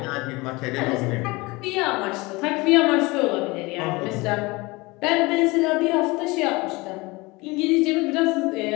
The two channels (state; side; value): quieter; right; 23.6 dB